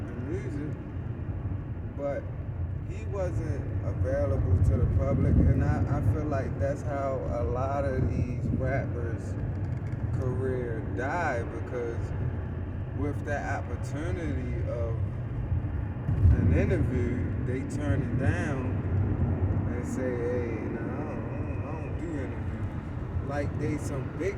music. But he wasn't available to the public, and I feel like that's how a lot of these rappers' career died, because with that opportunity of an interview, they turn it down and say, hey, no, I don't do interviews. Like they some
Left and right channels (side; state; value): both; identical; correlation 1.00